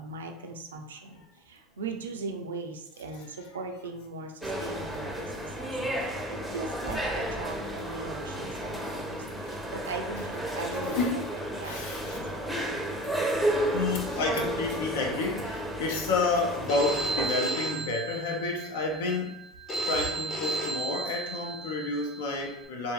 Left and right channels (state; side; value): normal; both; correlation 0.35